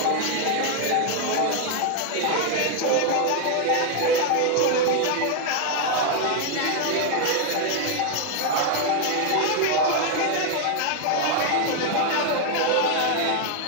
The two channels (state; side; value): different; both; correlation 0.00